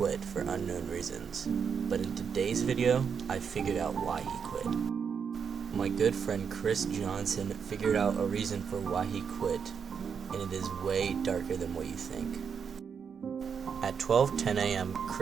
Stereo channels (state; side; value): quieter; left; 6.7 dB